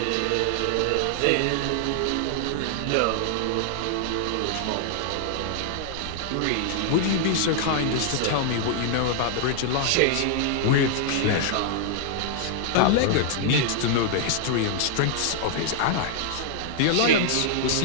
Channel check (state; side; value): different; both; correlation 0.00